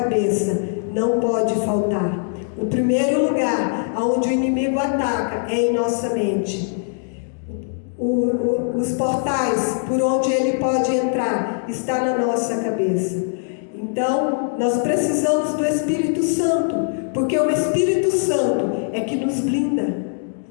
não pode faltar. O primeiro lugar onde o inimigo ataca é em nossa mente. Os portais por onde ele pode entrar está na nossa cabeça. Então, nós precisamos do Espírito Santo, porque o Espírito Santo é que nos blinda.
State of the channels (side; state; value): right; silent; digital silence